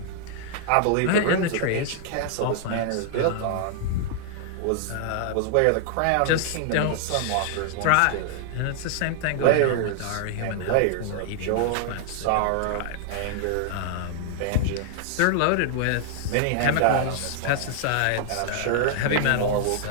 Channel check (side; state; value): both; different; correlation 0.00